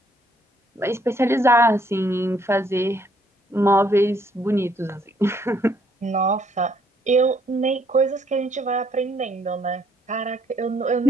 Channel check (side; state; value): both; normal; correlation 0.67